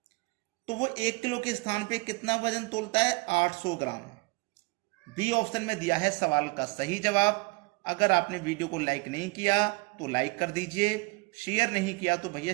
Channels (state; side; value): quieter; left; 27.4 dB